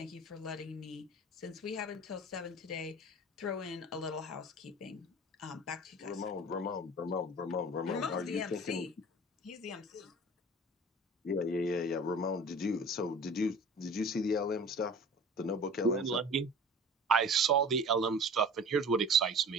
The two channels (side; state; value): both; normal; correlation 0.41